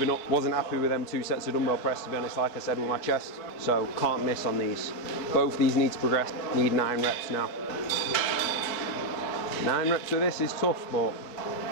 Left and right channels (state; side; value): late; right; 4.7 ms